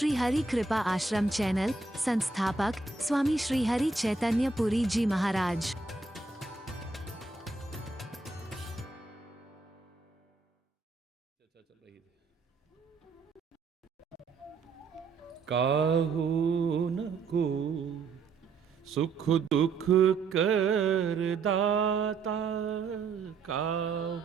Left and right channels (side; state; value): left; quieter; 4.1 dB